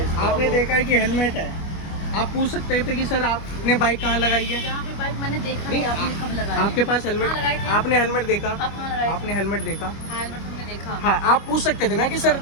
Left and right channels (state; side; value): late; right; 25 ms